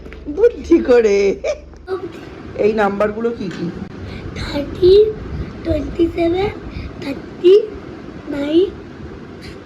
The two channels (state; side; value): identical; both; correlation 1.00